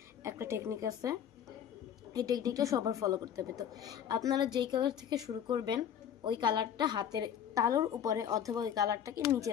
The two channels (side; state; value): right; quieter; 9.1 dB